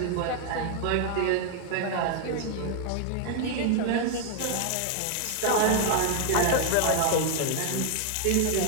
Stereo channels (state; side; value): different; both; correlation 0.00